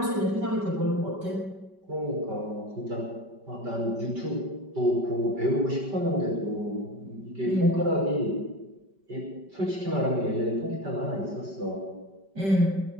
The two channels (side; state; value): left; late; 5.2 ms